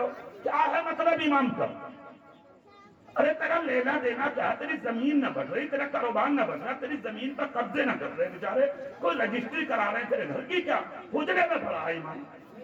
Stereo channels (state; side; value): identical; both; correlation 1.00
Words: کیا ہے مطلب امام کا؟ ارے تیرا لینا دینا کیا؟ تیری زمین نہ بڑھ رہی، تیرا کاروبار نہ بڑھ رہا، تیری زمین پر قبضے نہ کر رہے بیچارے، کوئی رجسٹری کرا رہے ہیں تیرے گھر کی. کیا حجرے میں پڑا ہے امام؟